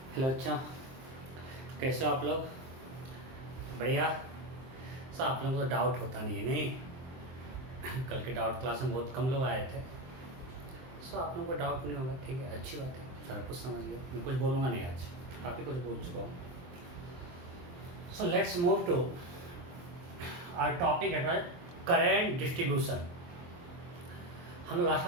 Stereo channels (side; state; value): left; late; 23 ms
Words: Hello अच्छा, कैसे हो आप लोग? बढ़िया। सर आप लोगों को तो डाउट होता नहीं है नहीं? कल के डाउट क्लास में बहुत कम लोग आए थे। सो आप लोगों को डाउट नहीं होगा, ठीक है, अच्छी बात है। सारा कुछ समझ गया, मैं कुछ बोलूँगा नहीं आज, काफ़ी कुछ बोल चुका हूँ। So let's move to our topic at current distribution. हम लोग लास्ट